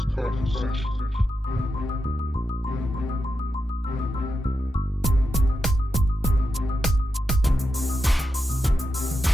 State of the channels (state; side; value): normal; both; correlation 0.88